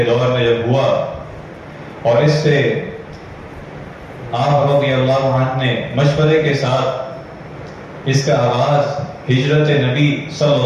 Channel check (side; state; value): both; identical; correlation 1.00